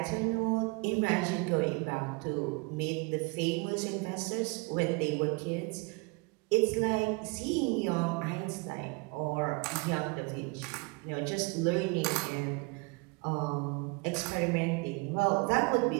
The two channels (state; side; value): quieter; left; 29.5 dB